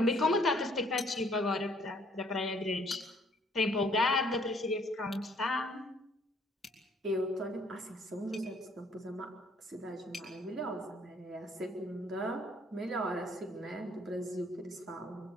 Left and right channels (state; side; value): normal; both; correlation 0.62